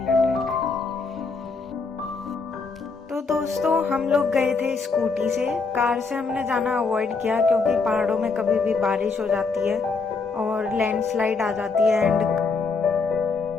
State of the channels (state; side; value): quieter; right; 4.4 dB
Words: trek. तो दोस्तों हम लोग गए थे स्कूटी से। कार से हमने जाना अवॉइड किया क्योंकि पहाड़ों में कभी भी बारिश हो जाती है और लैंडस्लाइड आ जाती है।